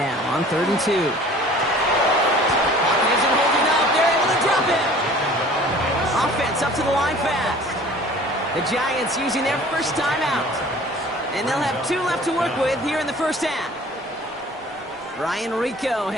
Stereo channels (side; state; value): both; normal; correlation 0.48